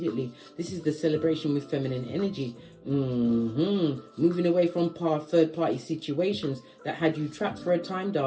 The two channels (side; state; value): both; identical; correlation 1.00